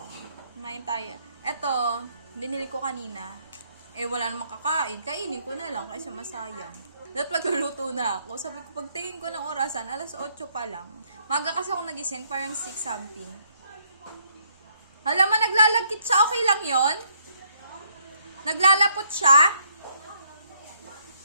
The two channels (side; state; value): both; inverted; correlation -0.69